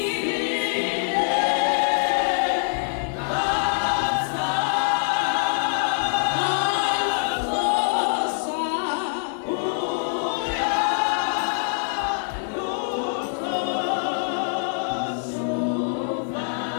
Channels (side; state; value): right; silent; 62 dB below the other